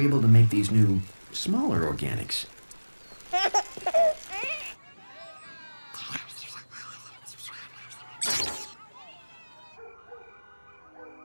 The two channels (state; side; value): inverted; both; correlation -1.00